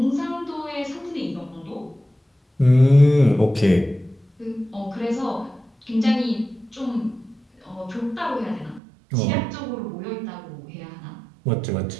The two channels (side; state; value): left; drops out; at 8.8 s